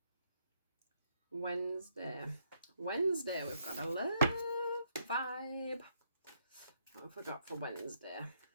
Wednesday, we've got a love vibe. What have we got for Wednesday?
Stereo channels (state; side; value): inverted; both; correlation -0.74